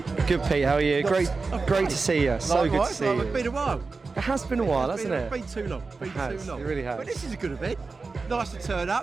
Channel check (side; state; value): left; quieter; 4.1 dB